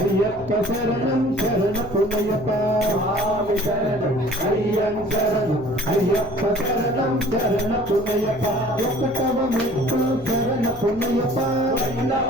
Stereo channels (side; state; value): left; noise; hum, 19 dB below the sound